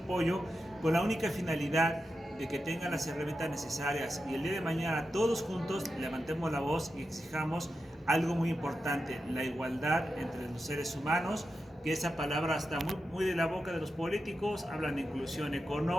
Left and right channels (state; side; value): normal; both; correlation 0.89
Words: con la única finalidad de que tengan las herramientas necesarias y el día de mañana todos juntos levantemos la voz y exijamos algo muy importante: la igualdad entre los seres humanos, que esa palabra está muy de la boca de los políticos. Hablan de inclusión